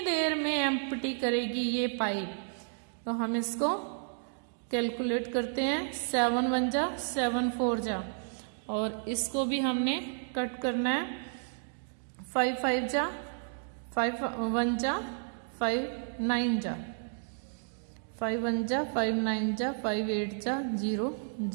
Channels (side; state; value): left; silent; digital silence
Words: देर में एम्प्टी करेगी ये पाइप? तो हम इसको कैलकुलेट करते हैं. 7 1 जा 7 4 जा, और इसको भी हमने कट करना है. 5 5 जा 5 1 जा 5 9 जा 5 1 जा 5 9 जा 5 8 जा 0